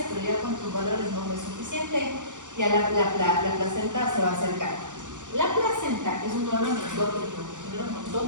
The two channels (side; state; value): left; late; 0.86 ms